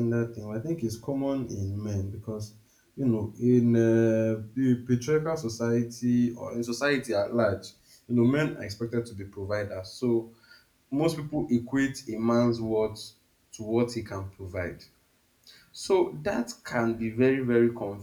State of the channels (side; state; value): both; identical; correlation 1.00